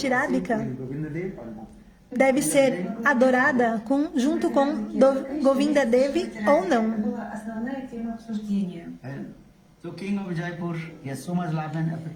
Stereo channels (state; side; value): identical; both; correlation 1.00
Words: Radhika Govinda Dev or not? deve ser adorada junto com Govinda Devi ou não. была основная тема обсуждения. And so King of Jaipur, he has so much love and